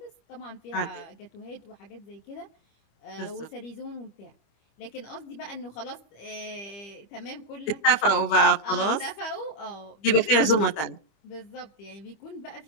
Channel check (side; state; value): right; late; 25 ms